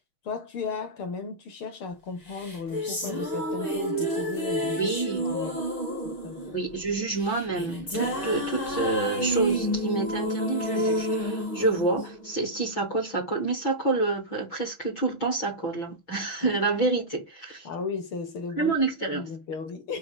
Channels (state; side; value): late; right; 6.3 ms